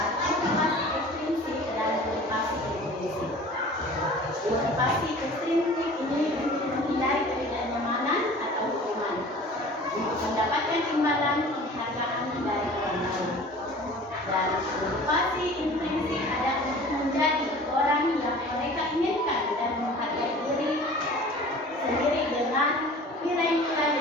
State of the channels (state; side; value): normal; both; correlation 0.44